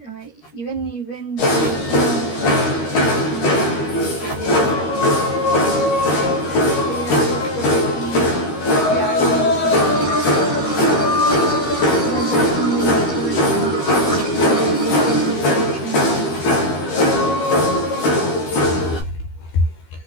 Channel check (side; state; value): right; late; 13 ms